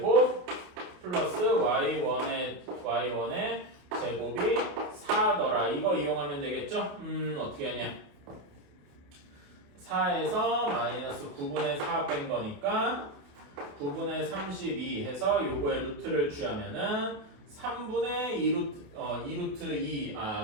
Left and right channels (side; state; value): left; late; 28 ms